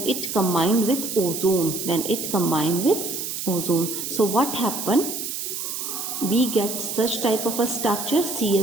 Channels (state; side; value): noise; right; hiss, 5 dB below the sound